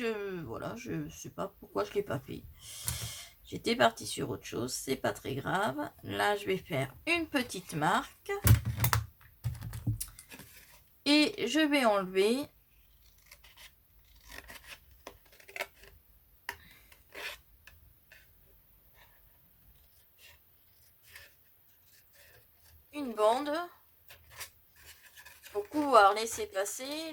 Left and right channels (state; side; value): identical; both; correlation 1.00